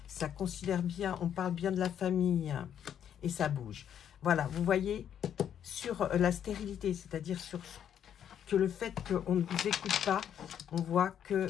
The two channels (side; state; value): right; quieter; 9.3 dB